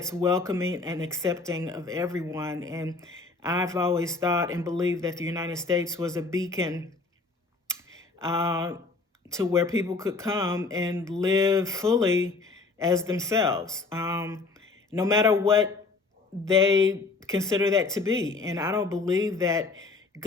welcoming and accepting of everyone. And I've always thought and believed that the United States was a beacon to where people could come and live fully as themselves, no matter what they consider that to be. And I don't believe that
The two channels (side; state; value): right; quieter; 3.9 dB